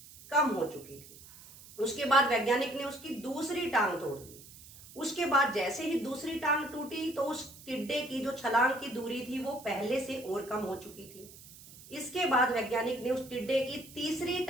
कम हो चुकी थी। उसके बाद वैज्ञानिक ने उसकी दूसरी टांग तोड़ दी। उसके बाद जैसे ही दूसरी टांग टूटी तो उस टिड्डे की जो छलांग की दूरी थी वो पहले से और कम हो चुकी थी। इसके बाद वैज्ञानिक ने उस टिड्डे की तीसरी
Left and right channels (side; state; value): right; noise; hiss, 19 dB below the sound